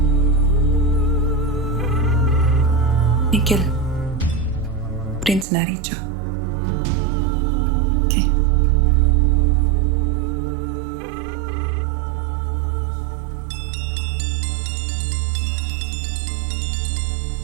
Nikhil, Prince Naricha. Okay.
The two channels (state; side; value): drops out; left; at 5.5 s